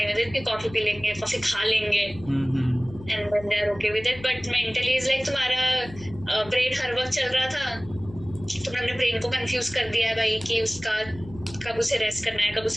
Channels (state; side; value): noise; left; hum, 17 dB below the sound